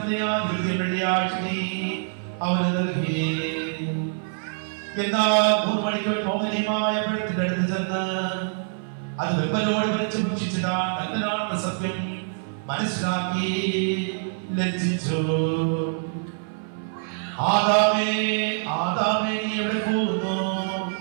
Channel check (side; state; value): left; silent; 60 dB below the other